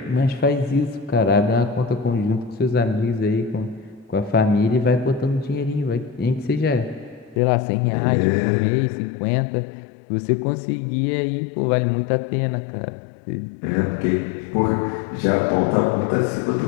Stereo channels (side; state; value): right; drops out; at 7.4 s